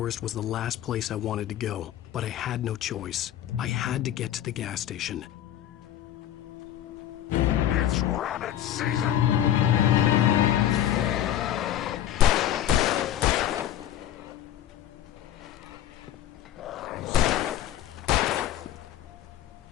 was the last place I wanted to go, but I had no choice. I had to get to the gas station. It's rabbit season!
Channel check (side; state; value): right; quieter; 11.5 dB